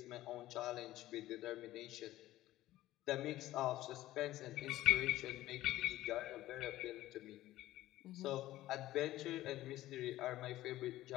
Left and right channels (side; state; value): right; quieter; 15.5 dB